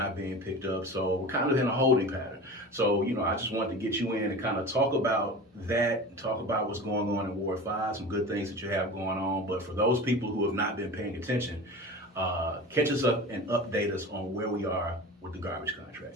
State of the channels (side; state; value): both; normal; correlation 0.33